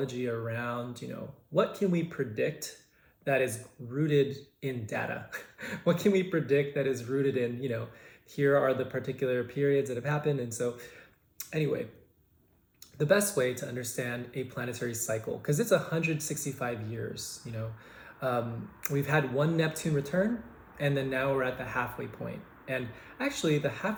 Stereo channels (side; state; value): both; identical; correlation 1.00